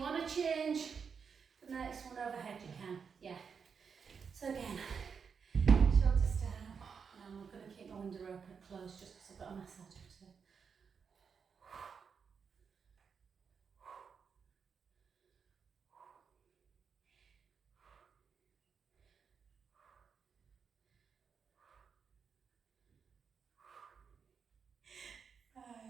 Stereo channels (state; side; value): quieter; left; 6.2 dB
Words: want to change the next one overhead, you can. Yeah. So again, shoulders down. And I'm going to keep my window open closed just because I've got a massage to do.